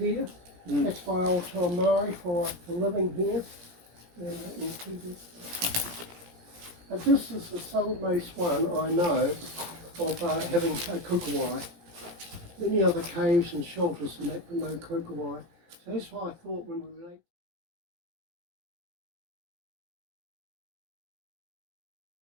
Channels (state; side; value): late; left; 17 ms